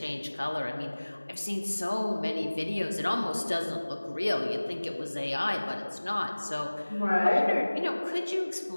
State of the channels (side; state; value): both; inverted; correlation -1.00